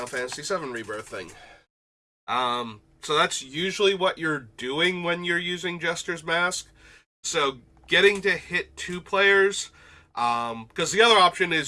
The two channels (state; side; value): identical; both; correlation 1.00